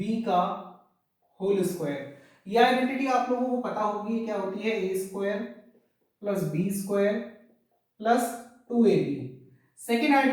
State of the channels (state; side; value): identical; both; correlation 1.00